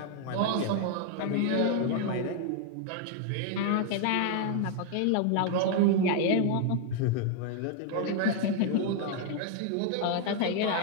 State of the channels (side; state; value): both; different; correlation 0.00